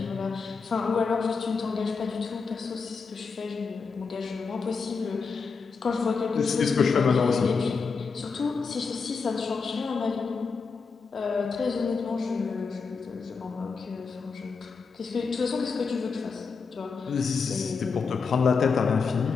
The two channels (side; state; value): right; quieter; 5.1 dB